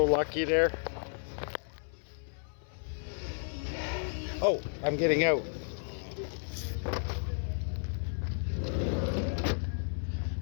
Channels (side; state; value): right; silent; 56 dB below the other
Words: lucky there. Oh, I'm getting out.